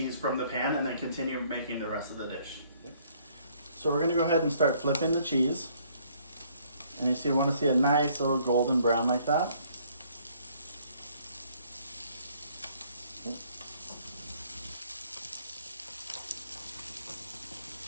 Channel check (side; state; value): both; inverted; correlation -0.63